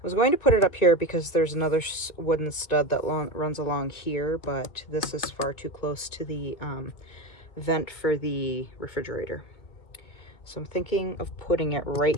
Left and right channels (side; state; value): right; late; 1.9 ms